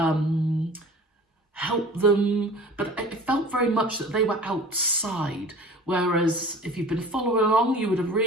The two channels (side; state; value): both; normal; correlation 0.43